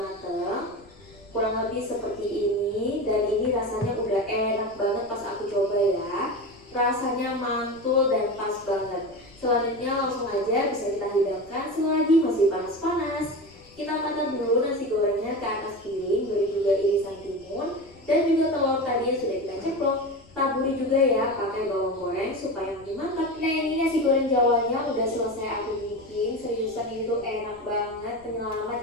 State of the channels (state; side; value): noise; left; rumble, 26 dB below the sound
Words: Kurang lebih seperti ini, dan ini rasanya udah enak banget pas aku coba ya. Rasanya mantul dan pas banget. Selanjutnya langsung aja bisa kita hidangkan selagi masih panas-panas. Kita angkat dulu nasi gorengnya ke atas piring, beri juga irisan timun dan juga telur tadi yang sudah kita ceplok. taburi juga ya pakai bawang goreng supaya makin mantap. Nah ini nasi goreng Jawanya udah selesai aku bikin. Seriusan ini tuh enak banget, penyelamat